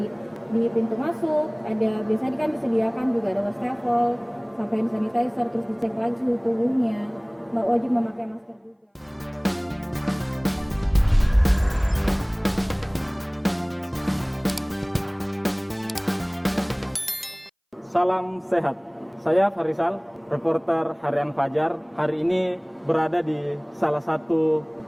di pintu masuk, biasanya kan disediakan juga ada wastafel, sampai hand sanitizer, terus dicek lagi suhu tubuhnya, wajib memakai masker juga. Salam sehat. Saya Farisal, reporter Harian Fajar. Hari ini berada di salah satu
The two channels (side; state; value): both; identical; correlation 1.00